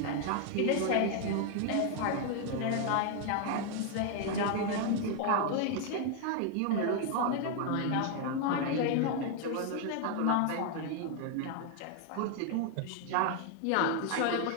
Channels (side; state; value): both; different; correlation 0.00